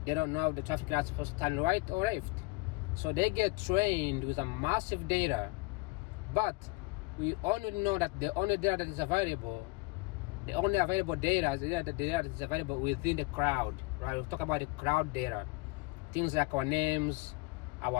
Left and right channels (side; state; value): right; quieter; 25.1 dB